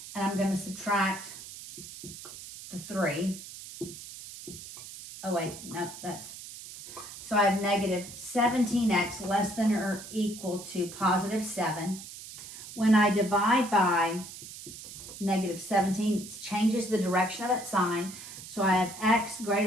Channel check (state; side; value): noise; right; hiss, 13 dB below the sound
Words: And I'm going to subtract the 3. Oh, wait, no, that's... So I have negative 17x less than or equal to positive 7. When I divide by negative 17, it changes the direction of that sign. So I have x